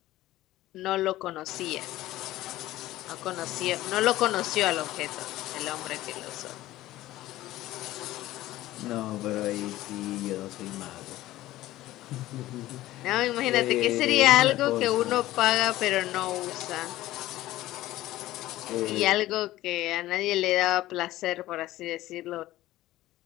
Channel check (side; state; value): right; quieter; 15.9 dB